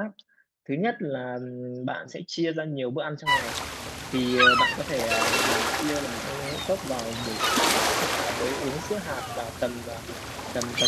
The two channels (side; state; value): both; identical; correlation 1.00